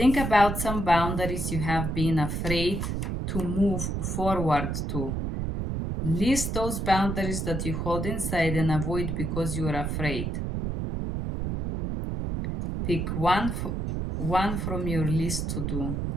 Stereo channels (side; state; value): right; noise; rumble, 2 dB below the sound